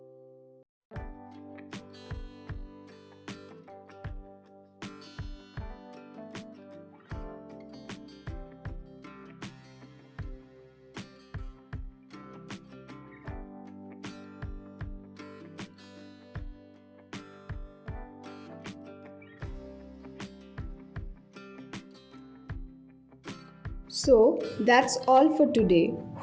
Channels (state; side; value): identical; both; correlation 1.00